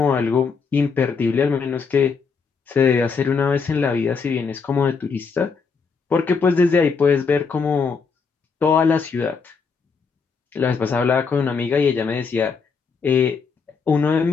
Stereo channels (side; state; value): right; quieter; 5.3 dB